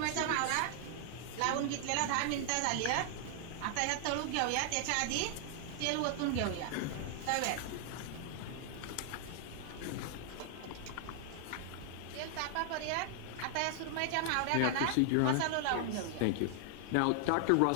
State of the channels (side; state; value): both; different; correlation 0.00